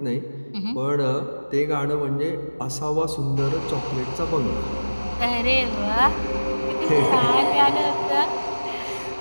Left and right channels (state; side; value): inverted; both; correlation -1.00